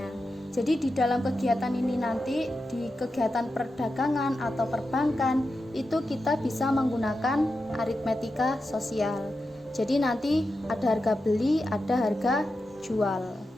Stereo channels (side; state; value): both; normal; correlation 0.90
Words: Jadi di dalam kegiatan ini nanti, di kegiatan perdagangan atau perbankan, itu kita bisa menggunakan aritmetika sosial. Jadi nanti ada harga beli, ada harga jual.